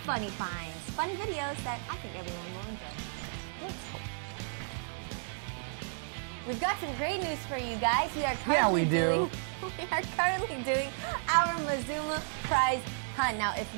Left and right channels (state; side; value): silent; left; 56 dB below the other